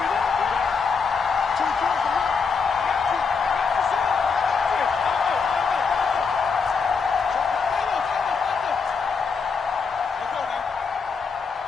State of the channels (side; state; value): right; quieter; 5.3 dB